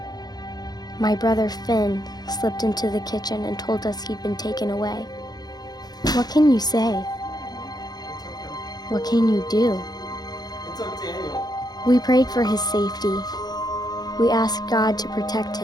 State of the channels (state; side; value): late; right; 0.19 ms